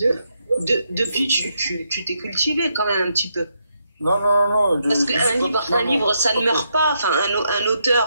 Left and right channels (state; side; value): inverted; both; correlation -0.79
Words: Depuis, tu t'es cultivé quand même un petit peu. Non. Parce qu'un livre, ça ne meurt pas. Enfin, un